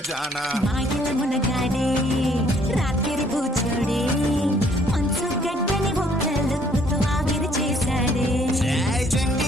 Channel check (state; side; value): normal; both; correlation 0.63